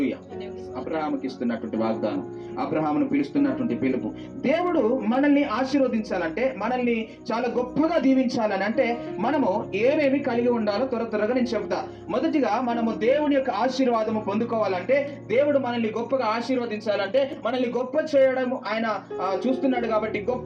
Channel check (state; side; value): identical; both; correlation 1.00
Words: అబ్రహాముకి ఇస్తున్నటువంటి వాగ్దానం, అబ్రహామును పిలుస్తున్నటువంటి పిలుపు. దేవుడు మనల్ని ఆశీర్వదించాలంటే, మనల్ని చాలా గొప్పగా దీవించాలని అంటే మనము ఏమేమి కలిగి ఉండాలో త్వరగా నేను చెప్తా. మొదటిగా మనము దేవుని యొక్క ఆశీర్వాదము పొందుకోవాలంటే, దేవుడు మనల్ని గొప్పగా ఆశీర్వదించాలంటే, మనల్ని గొప్ప చేయడం ఆయన చూస్తున్నాడు కాబట్టి,